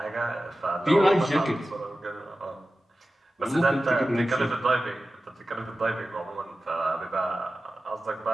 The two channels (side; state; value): both; normal; correlation 0.95